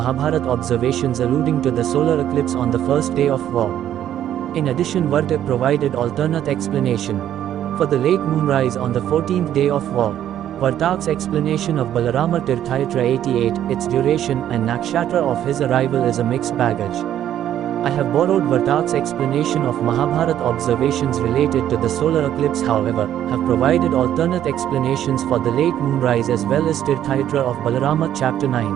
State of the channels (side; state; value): left; quieter; 11.1 dB